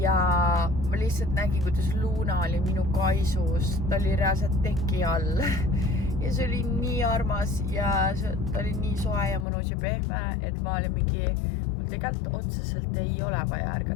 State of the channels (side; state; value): right; drops out; at 9.5 s